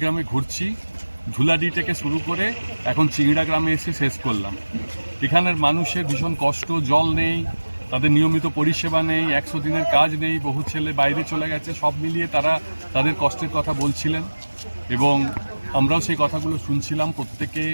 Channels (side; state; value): both; inverted; correlation -1.00